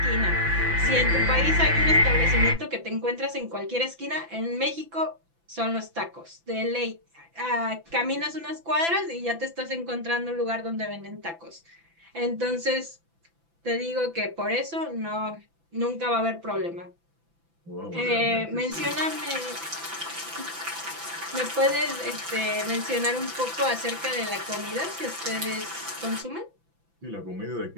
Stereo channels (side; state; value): left; late; 6.0 ms